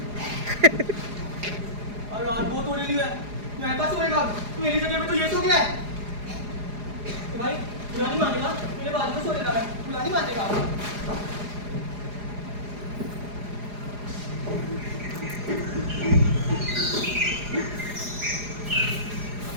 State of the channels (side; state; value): left; late; 4.9 ms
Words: और रात बहुत हो रही है, मैं कहाँ सोएगा? मेरी जगह पे तो ये सो गया है। तो भाई बुला नहीं मानेगा, मेरे बाजू में सो लेता है, बुला नहीं मानेगा।